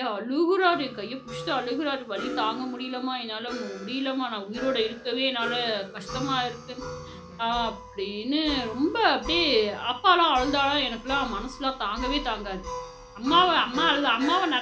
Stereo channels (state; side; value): identical; both; correlation 1.00